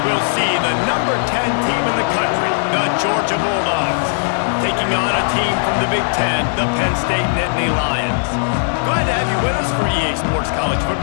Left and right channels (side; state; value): right; silent; digital silence